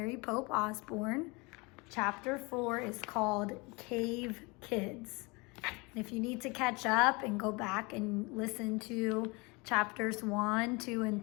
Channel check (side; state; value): right; quieter; 27.2 dB